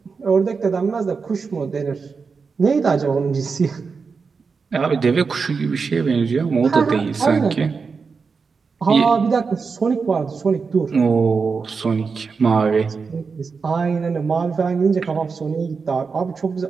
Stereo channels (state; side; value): quieter; left; 5.1 dB